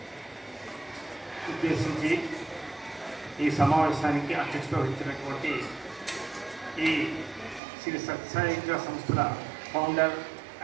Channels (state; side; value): drops out; left; at 7.6 s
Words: ఉద్దేశించి ఈ సమావేశానికి అధ్యక్షత వహించినటువంటి ఈ శ్రీ సత్యసాయి విద్యా సంస్థల ఫౌండర్